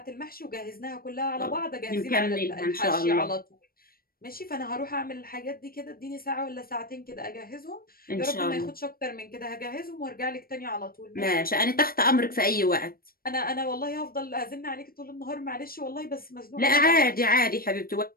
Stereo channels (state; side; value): late; right; 0.43 ms